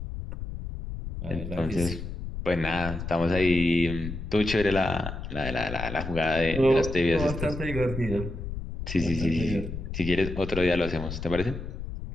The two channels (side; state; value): left; noise; rumble, 7 dB below the sound